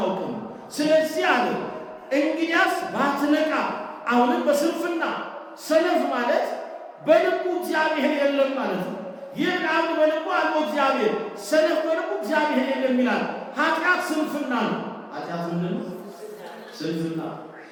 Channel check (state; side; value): identical; both; correlation 1.00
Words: ስለዚህ አለ እንግዲያስ ባትነቃ። አሁንም በስንፍና ሰነፍ ማለት በልቡ እግዚአብሔር የለም ማለት ነው። ይህ አንድ በልቡ አለው እግዚአብሔር፣ ሰነፍ በልቡ እግዚአብሔር የለም ይላል። ኃጢአት ስንፍና ነው። ኃጢአት ምንድን ነው? ስንፍና።